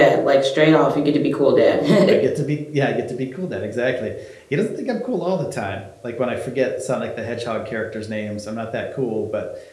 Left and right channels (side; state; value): both; identical; correlation 1.00